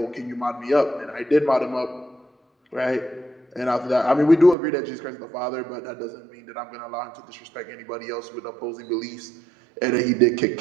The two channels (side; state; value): left; drops out; at 4.5 s